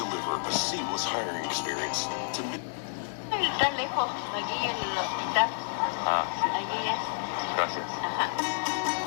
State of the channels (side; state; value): right; silent; 58 dB below the other